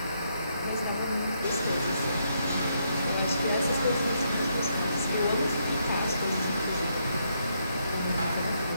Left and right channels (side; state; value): both; inverted; correlation -0.76